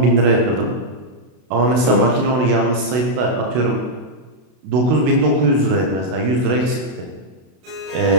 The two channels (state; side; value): late; left; 32 ms